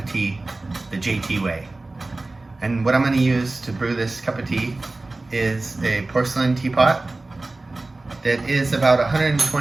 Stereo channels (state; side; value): quieter; left; 3.1 dB